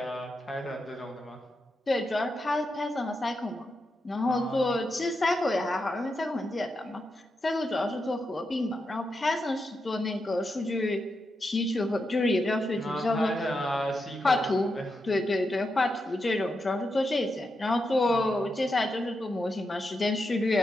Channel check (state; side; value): normal; both; correlation 0.86